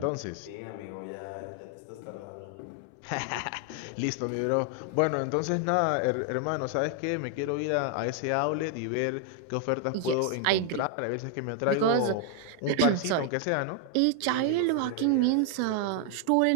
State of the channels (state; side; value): different; both; correlation 0.00